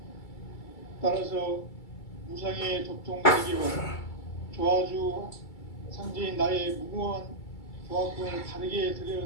따라서 무상의 도통 세계와 조화주 상제인 나의 무궁한 조화권을 다르게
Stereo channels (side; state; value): right; late; 2.3 ms